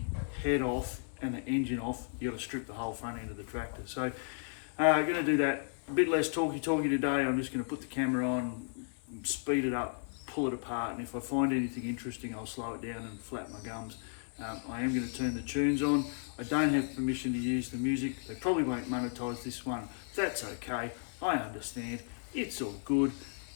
head off and the engine off, you got to strip the whole front end of the tractor. So going to do that. A bit less talky today. I'm just going to put the camera on, speed it up, pull it apart, and if I find anything interesting, I'll slow it down and flap my gums. I am going to turn the tunes on. I don't have permission to use the music. They probably won't monetize this one. That's okay. I understand. It's all good.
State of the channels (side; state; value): right; silent; digital silence